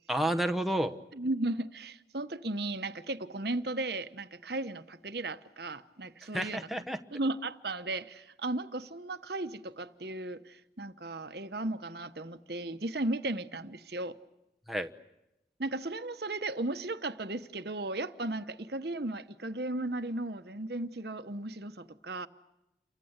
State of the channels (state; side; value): normal; both; correlation 0.48